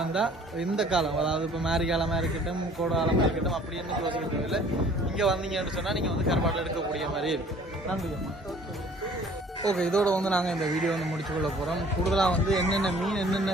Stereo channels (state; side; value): normal; both; correlation 0.53